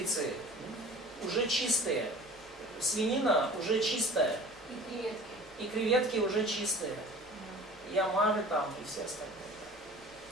уже чистые, свинина уже чистая, и креветки уже чистые, и омары там, и все остальные.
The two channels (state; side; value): noise; left; rumble, 28 dB below the sound